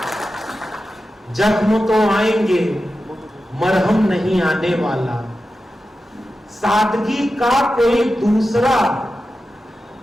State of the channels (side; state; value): both; normal; correlation 0.92